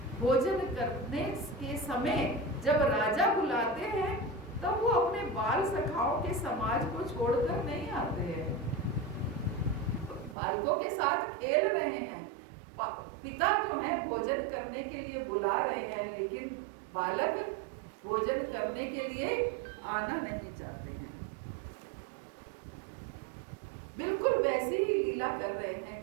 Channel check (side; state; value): left; drops out; at 10.4 s